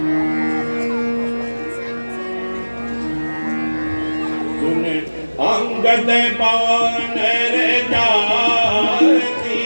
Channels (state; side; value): inverted; both; correlation -1.00